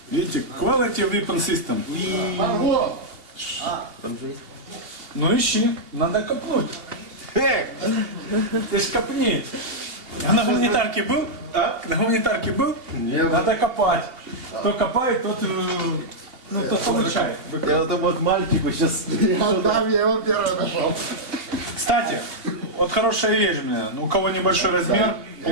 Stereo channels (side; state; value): left; late; 2.8 ms